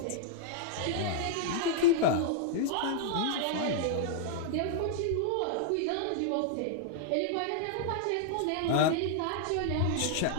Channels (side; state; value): both; different; correlation -0.01